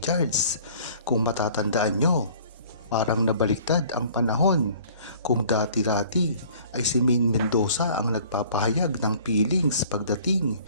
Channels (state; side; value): inverted; both; correlation -0.52